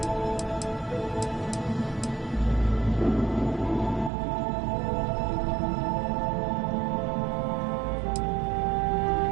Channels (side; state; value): left; drops out; at 4.1 s